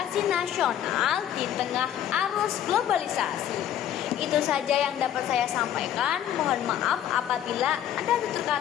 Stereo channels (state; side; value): quieter; right; 10.8 dB